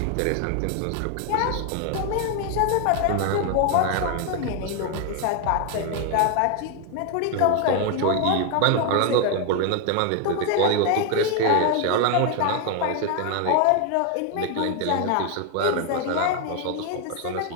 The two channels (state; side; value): different; both; correlation 0.01